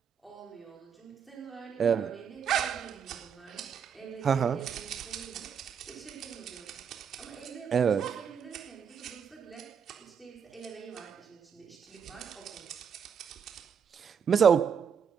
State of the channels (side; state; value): left; quieter; 7.1 dB